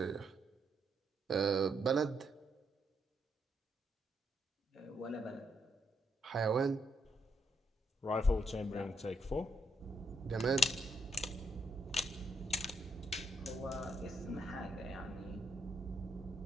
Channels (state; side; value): normal; both; correlation 0.75